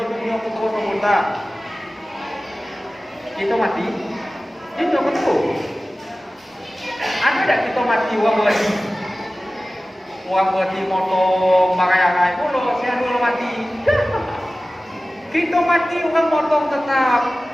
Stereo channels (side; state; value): both; normal; correlation 0.96